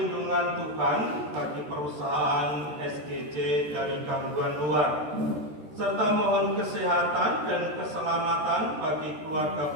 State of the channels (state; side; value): late; left; 13 ms